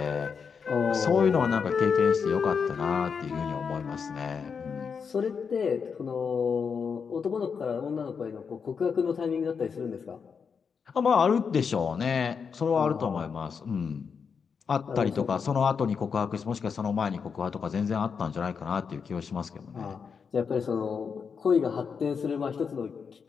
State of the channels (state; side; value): quieter; right; 6.1 dB